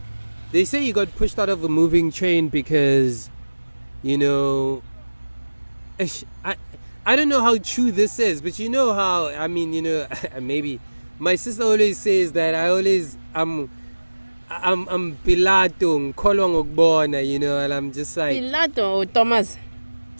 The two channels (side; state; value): both; inverted; correlation -1.00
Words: They say he got pushed out of a moving train because, I I don't know how true this is, but you know how, I mean, maybe my sister always says that I'm pilato, ngikholwa ngokubona, and I'm just like Pilato or Thomas?